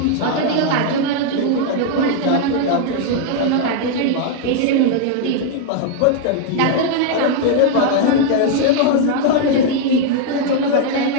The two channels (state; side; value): different; both; correlation 0.00